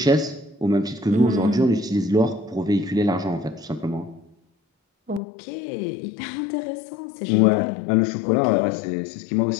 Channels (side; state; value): right; drops out; at 5.2 s